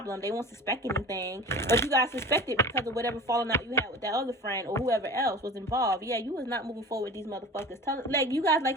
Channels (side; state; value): both; normal; correlation 0.37